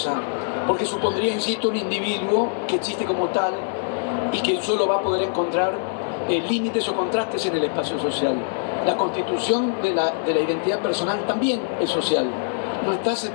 porque supondría, insisto, un individuo que existe como tal y que solo va a poder encontrar límites o contrastes en el espacio social. La constitución de la identidad personal también es social, no está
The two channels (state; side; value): silent; right; 63 dB below the other